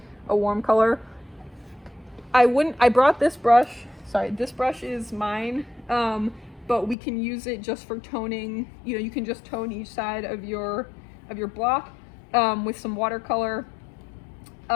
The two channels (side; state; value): right; drops out; at 7.0 s